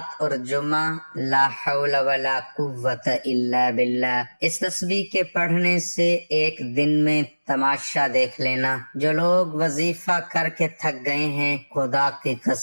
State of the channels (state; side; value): inverted; both; correlation -1.00